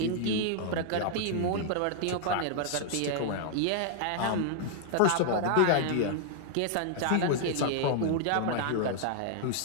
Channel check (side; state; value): both; different; correlation -0.01